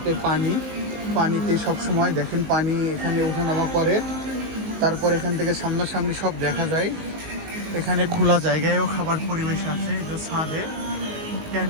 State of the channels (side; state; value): left; late; 19 ms